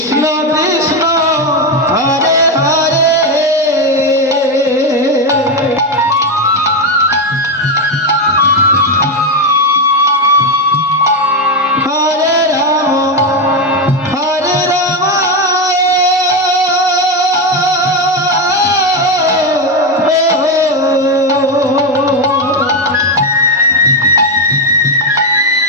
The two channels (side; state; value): both; normal; correlation 0.09